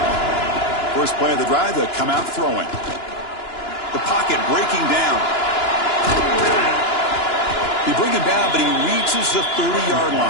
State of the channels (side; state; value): right; late; 2.9 ms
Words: First play of the drive, they come out throwing. The pocket breaking down. They bring him down, but he reaches the 30-yard